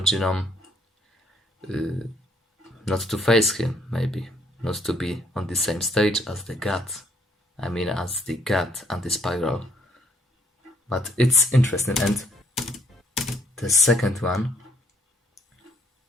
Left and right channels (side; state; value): both; normal; correlation 0.66